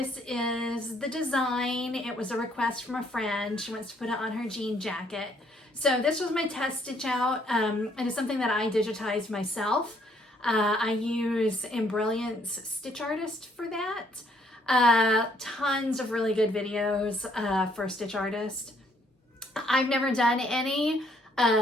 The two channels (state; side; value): normal; both; correlation 0.67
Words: is the design. It was a request from a friend. She wants to put it on her jean jacket. So this was my test stitch out. It is something that I digitized myself. I use Embroidery's Stitch Artist for that. Tons of really good videos for Stitch Artist. I've never done any